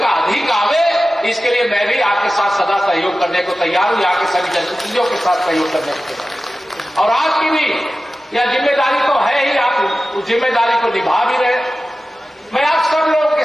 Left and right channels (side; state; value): both; normal; correlation 0.95